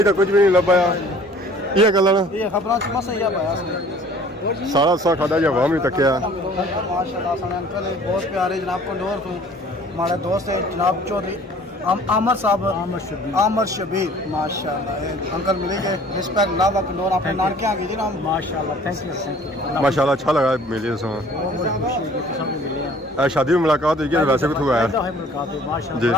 तो कुछ भी नहीं लभाया ये गल ना ये खबरां च बस इ'यै पाया सारा सा खादा या वाम भी तकिया माशाल्लाह सने अंकल है बहुत प्यारे जनाब कंडोर तो हमारे दोस्त है जनाब चौधरी आमर साहब आमर शबीर माशाल्लाह अंकल मिलेंगे रिस्पेक्ट लावा कंडोर अपने नानके आ गए जी नाम माशाल्लाह थैंक यू माशाल्लाह अच्छा लगा मिले सो शादी में मुलाकात हुई है वैसे भी तो है जी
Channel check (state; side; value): normal; both; correlation 0.52